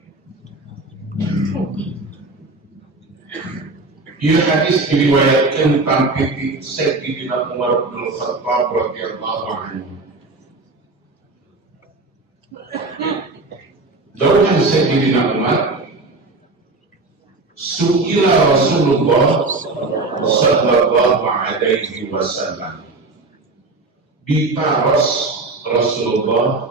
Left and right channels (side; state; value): left; quieter; 3.4 dB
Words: Ia hadis diriwayatkan tentang Sayyidina Umar bin Khattab radhiyallahu anhu. Dauhan Sayyidina Umar, su'ila Rasulullah sallallahu alaihi wasallam, ditaros